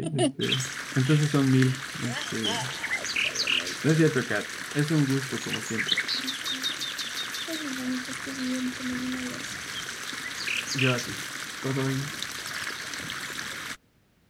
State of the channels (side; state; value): both; identical; correlation 1.00